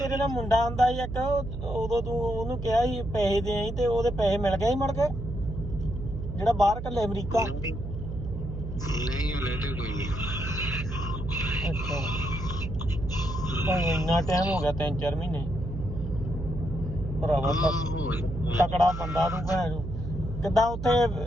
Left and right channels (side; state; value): right; noise; hum, 6 dB below the sound